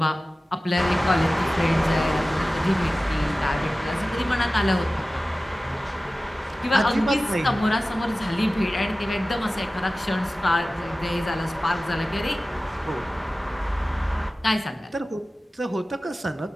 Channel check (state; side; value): normal; both; correlation 0.96